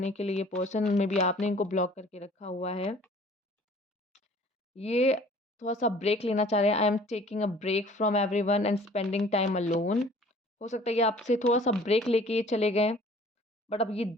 के लिए ये पर्सन, मेबी आपने इनको ब्लॉक करके रखा हुआ है। ये थोड़ा-सा ब्रेक लेना चाह रहे हैं, I am taking a break from everyone and spending time alone. हो सकता है ये आपसे थोड़ा-सा ब्रेक लेके ये चले गए। बट अब ये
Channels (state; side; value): normal; both; correlation 0.51